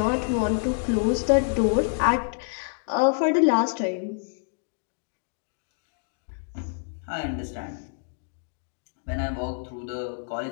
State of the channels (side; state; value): right; silent; digital silence